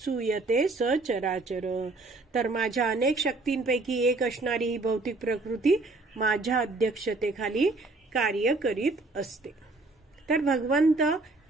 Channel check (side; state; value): left; quieter; 3.3 dB